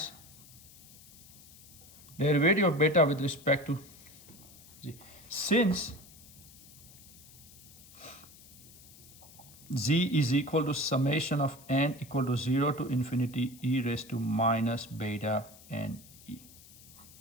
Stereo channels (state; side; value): noise; left; hiss, 21 dB below the sound